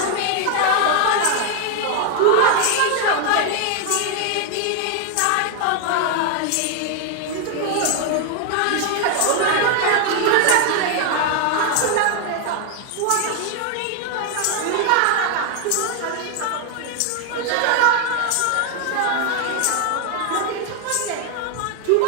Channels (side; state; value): both; different; correlation 0.00